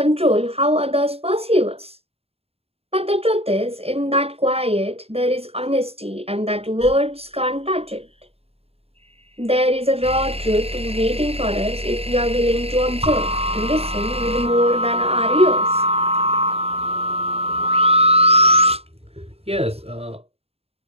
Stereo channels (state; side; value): late; left; 0.29 ms